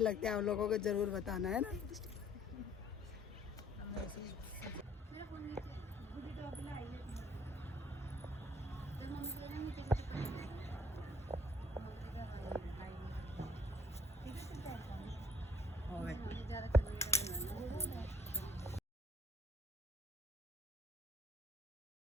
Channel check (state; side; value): normal; both; correlation 0.59